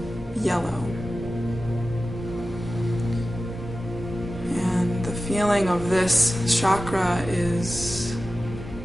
yellow. And the feeling of this chakra is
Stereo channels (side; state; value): both; normal; correlation 0.95